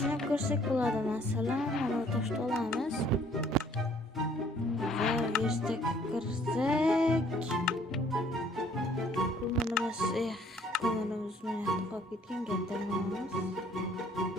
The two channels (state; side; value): normal; both; correlation 0.60